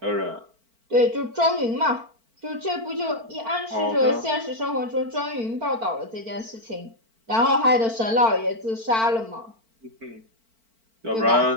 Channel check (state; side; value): late; left; 4.4 ms